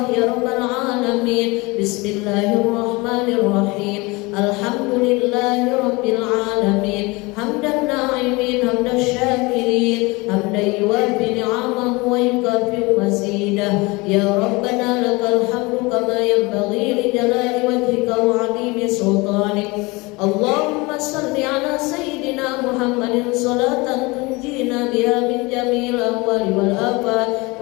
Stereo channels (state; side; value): quieter; right; 24.6 dB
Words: ya Rabbal Alamin. Bismillahirrahmanirrahim. Alhamdulillahi Rabbil Alamin. Hamdan na'imin, hamdan syakirin, hamdan yuwafi ni'amahu wa yukafi mazidah. Ya Rabbana lakal hamdu kama yanbaghi li jalali wajhika wa 'azimi sultanik. Allahumma salli ala sayyidina Muhammadin salatan tunjina biha min jami'il ahwali wal afat